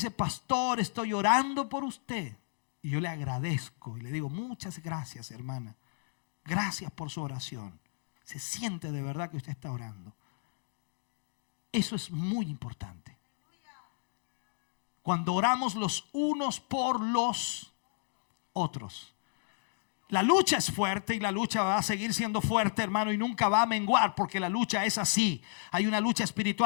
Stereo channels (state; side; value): silent; right; digital silence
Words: pastor, estoy orando por usted. Y yo le agradezco y le digo: muchas gracias, hermana. Gracias por su oración. Se siente de verdad que usted está orando. Eso es muy importante. Cuando oramos los unos por los otros. La lucha es fuerte y la lucha va a seguir siendo fuerte, hermano, y nunca va a menguar, porque la lucha es así. Hay una lucha